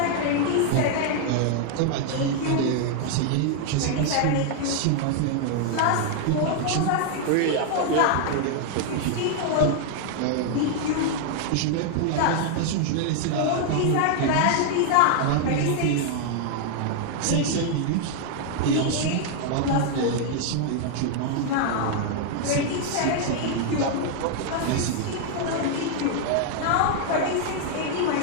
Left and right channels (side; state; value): both; different; correlation 0.00